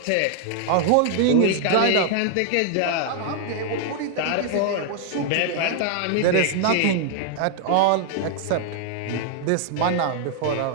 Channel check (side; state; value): both; different; correlation 0.00